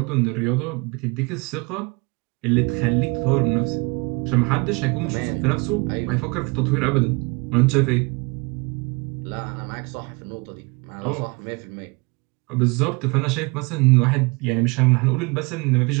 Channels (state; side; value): quieter; left; 28.7 dB